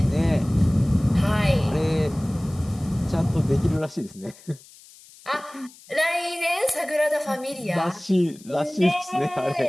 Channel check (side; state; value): left; noise; hiss, 23 dB below the sound